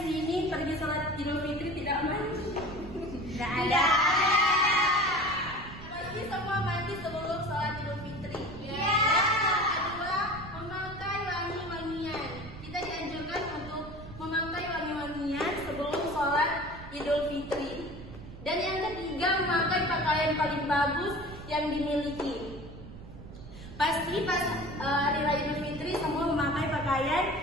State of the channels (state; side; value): noise; right; rumble, 14 dB below the sound